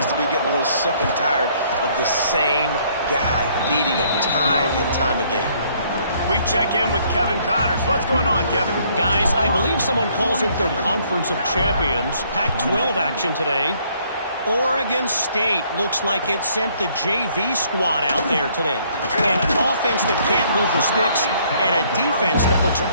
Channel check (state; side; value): inverted; both; correlation -0.64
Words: to be getting a little sick and tired of the same guy beating him time and time again. We check in with Kevin Connors. What's going on, Kevin? Guys, I believe someone calls it the Conference of Champions. Pac-12 action today. Oregon State looks like it sent the JV squad out there today. An offense that can't move the sticks and a defense that looks